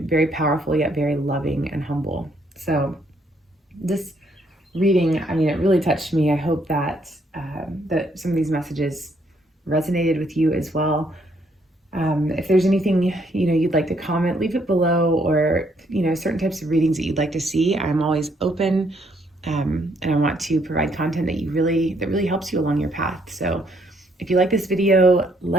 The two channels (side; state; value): both; normal; correlation 0.70